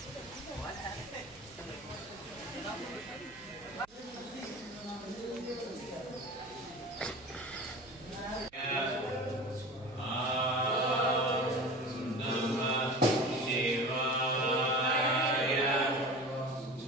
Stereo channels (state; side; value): noise; right; hum, 28 dB below the sound